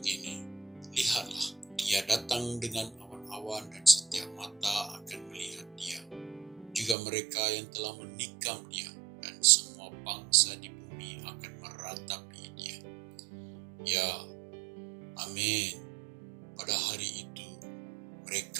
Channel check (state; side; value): drops out; left; at 7.0 s